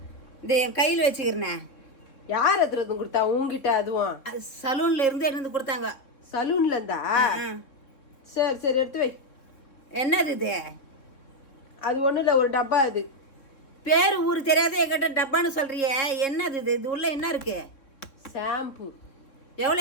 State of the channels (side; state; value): right; late; 3.7 ms